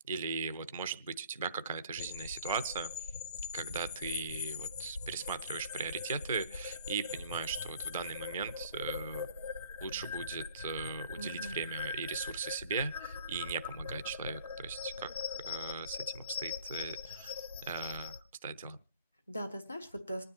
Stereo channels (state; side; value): inverted; both; correlation -0.52